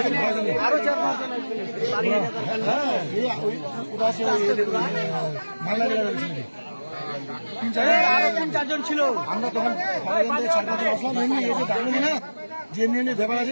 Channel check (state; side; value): inverted; both; correlation -1.00